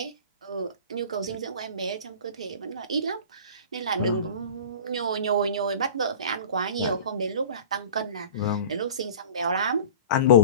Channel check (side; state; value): both; inverted; correlation -0.39